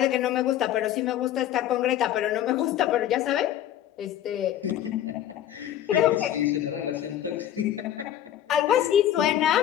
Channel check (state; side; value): quieter; right; 11.5 dB